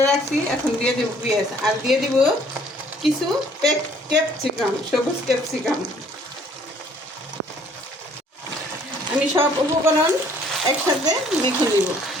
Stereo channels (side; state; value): both; normal; correlation 0.59